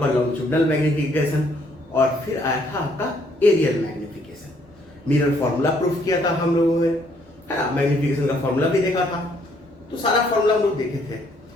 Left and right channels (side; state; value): both; normal; correlation 0.67